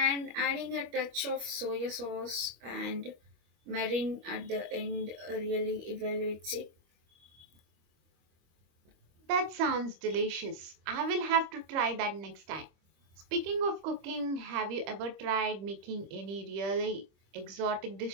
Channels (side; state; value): left; late; 25 ms